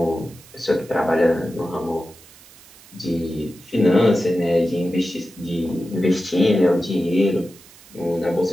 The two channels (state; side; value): noise; right; hiss, 23 dB below the sound